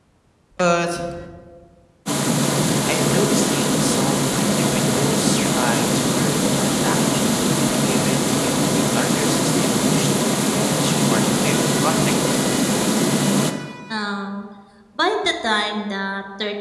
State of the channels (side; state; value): both; identical; correlation 1.00